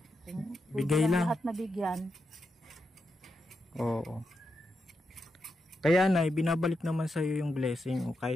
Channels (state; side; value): normal; both; correlation 0.86